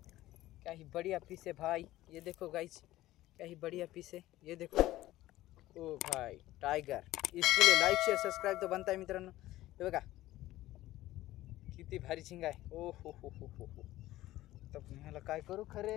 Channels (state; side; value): quieter; right; 15.9 dB